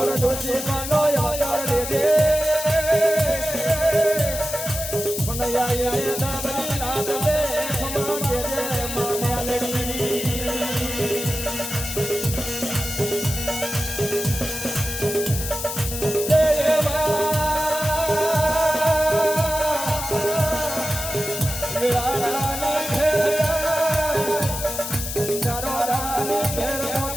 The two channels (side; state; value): left; noise; hiss, 6 dB below the sound